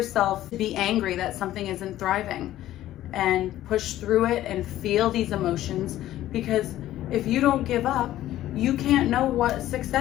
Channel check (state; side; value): quieter; right; 13.8 dB